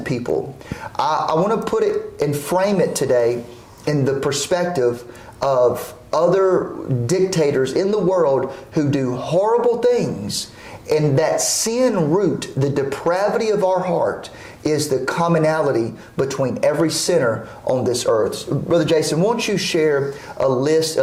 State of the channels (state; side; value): identical; both; correlation 1.00